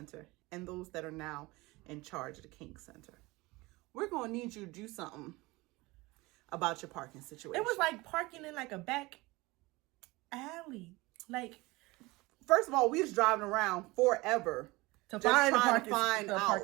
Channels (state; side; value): quieter; left; 22.1 dB